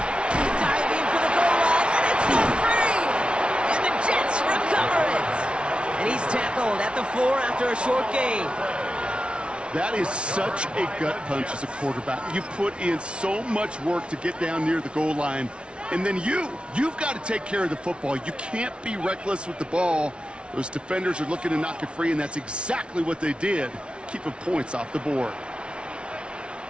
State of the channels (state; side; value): late; left; 0.058 ms